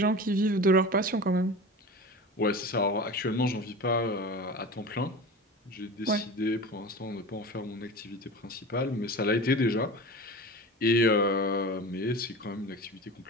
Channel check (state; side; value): normal; both; correlation 0.32